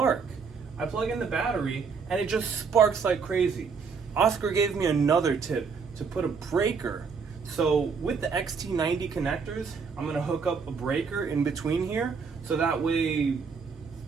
I plug in the battery and it just sparks like crazy. Oscar gave me another tip to put a breaker. So with the XT90 connectors, I'm gonna hook up a breaker in between here so that way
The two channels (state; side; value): quieter; left; 5.5 dB